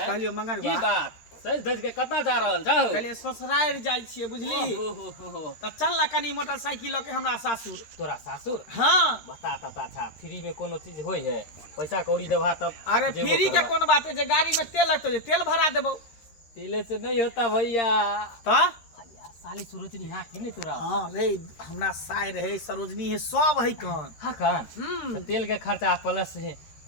मंगरुआ की बात सज धज के कता जा रहल छौ? कहलिए ससुराल जाय छिए, बुझली? त चल ना कनी मोटरसाइकिल के हमरा सासुर। तोरा सासुर? हां बता ता अच्छा फ्री में कोनो चीज होय है? पैसा कौड़ी देबा तब। अरे फ्री के कोन बात है, जे गाड़ी में तेल लगतो, जे तेल भरा देबो। तेले से नहीं होता भैया। त भैया साली सरोजनी हां कि नहीं तोरा? हां रे, हमरा साय रहे, सरोजनी है, सब है कान। हां कान। तेल के खर्चा प्लस है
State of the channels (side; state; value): right; late; 13 ms